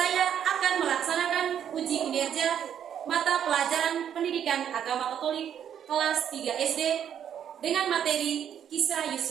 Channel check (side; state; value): left; quieter; 9.2 dB